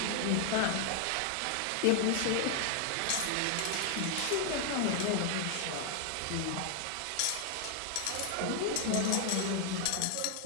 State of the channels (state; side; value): different; both; correlation 0.00